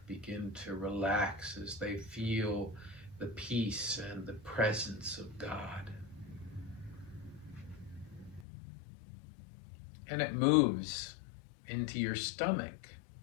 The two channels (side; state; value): right; drops out; at 8.5 s